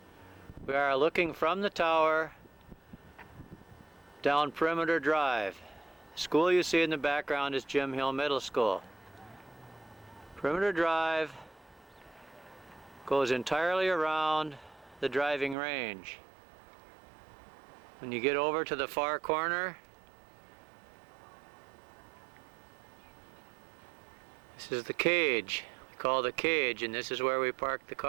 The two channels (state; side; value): drops out; left; at 15.6 s